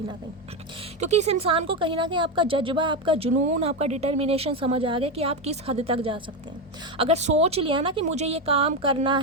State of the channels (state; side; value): normal; both; correlation 0.11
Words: ना कहीं। क्योंकि इस इंसान को कहीं ना कहीं आपका जज्बा, आपका जुनून, आपका डिटर्मिनेशन समझ आ गया कि आप किस हद तक जा सकते हैं। अगर सोच लिया ना कि मुझे ये काम करना